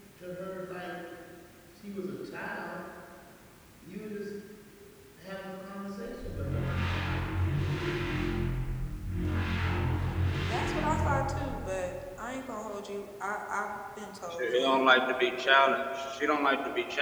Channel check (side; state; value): both; identical; correlation 1.00